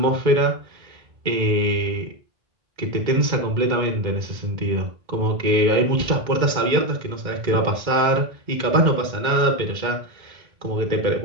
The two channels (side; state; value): left; late; 2.1 ms